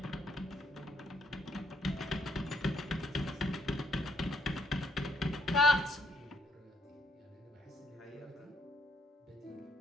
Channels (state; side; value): normal; both; correlation 0.70